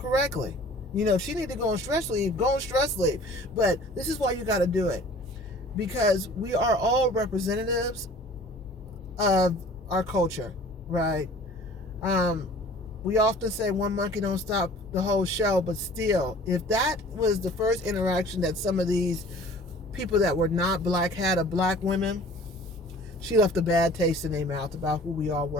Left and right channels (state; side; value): normal; both; correlation 0.48